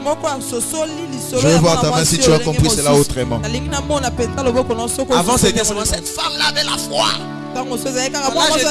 Je veux voir ta main si tu as compris cela autrement. Avant c'était seulement cette femme-là avait la foi. Là je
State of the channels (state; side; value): identical; both; correlation 1.00